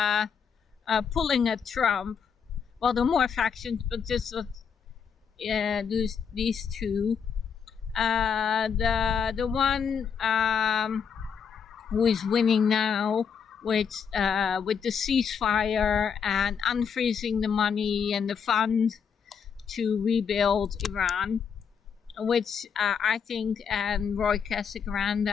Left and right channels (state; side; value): quieter; right; 6.8 dB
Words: pulling at Trump. Well, there are more factions, but just these two. The one who is winning now with the ceasefire and unfreezing the money and the fund to rebuild Iran, which I think, and Roy